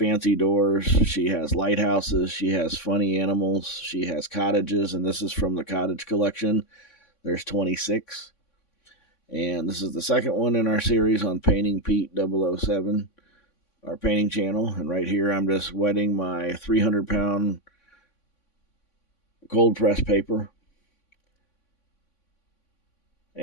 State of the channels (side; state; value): right; late; 3.5 ms